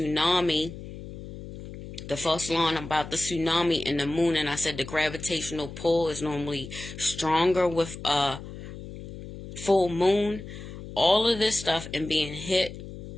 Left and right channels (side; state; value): left; noise; hum, 12 dB below the sound